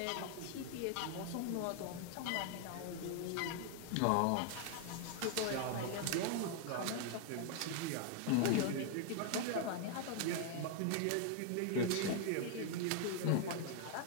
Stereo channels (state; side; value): different; both; correlation 0.00